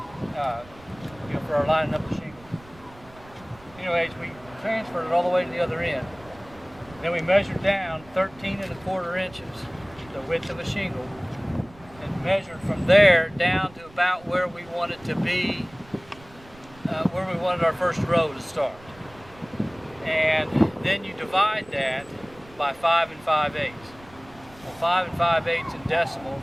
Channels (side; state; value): right; noise; rumble, 23 dB below the sound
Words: for our lining up the shingles. Anyways, we transferred it all the way to the other end. Then we measured down 13¼ inches, the width of a shingle, and measured from there down to about where we wanted to be, where we wanted our first row to start. And then you divide that by 5 5/8. Well, 5 5/8 in decimals